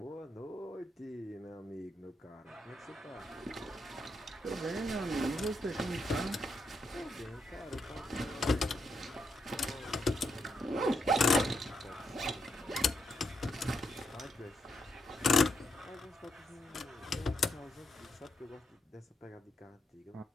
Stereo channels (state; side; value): normal; both; correlation 0.81